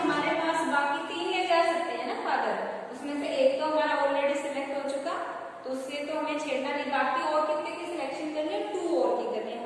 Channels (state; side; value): identical; both; correlation 1.00